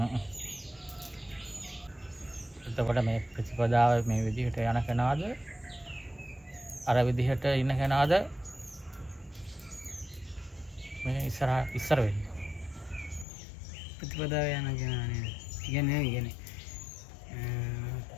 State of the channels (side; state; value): right; drops out; at 13.2 s